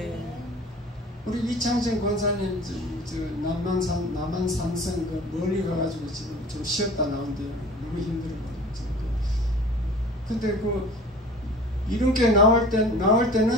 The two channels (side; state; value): both; normal; correlation 0.43